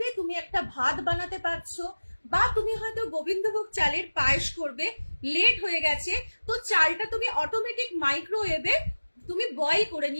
তুমি একটা ভাত বানাতে পারছো, বা তুমি হয়তো গোবিন্দভোগ চালের পায়েস করবে, লেট হয়ে গেছে, তো চালটা তুমি অটোমেটিক মাইক্রোওয়েভে তুমি বয়েল করে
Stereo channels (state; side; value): inverted; both; correlation -1.00